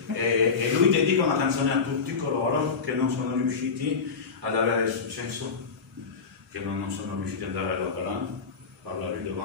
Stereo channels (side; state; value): right; quieter; 5.2 dB